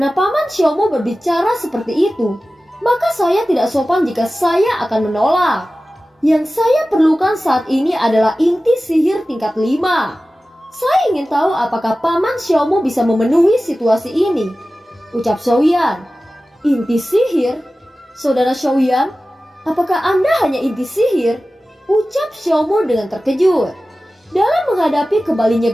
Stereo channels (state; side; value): normal; both; correlation 0.96